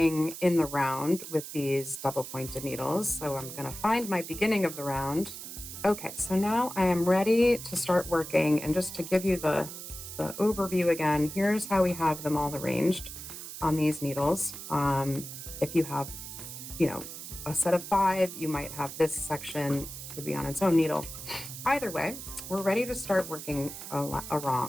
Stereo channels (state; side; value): noise; right; hiss, 10 dB below the sound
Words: in the round with these double pointed needles. So I'm going to find my beginning of the round. Okay, so now I am ready to start working, and just to give you the overview again, here's how we have them all arranged on these needles. If you have, a set of 5, you might have this section would be on its own needle. Either way, we're ready to start working